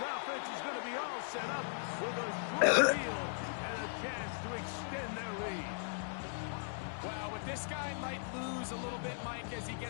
offense is going to be all set up with a short field and a chance to extend their lead. Well, with this guy might lose a little bit, Mike, as he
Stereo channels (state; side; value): silent; right; digital silence